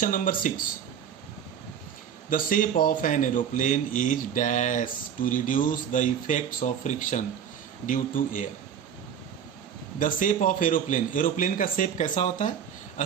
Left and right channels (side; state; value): left; quieter; 8.4 dB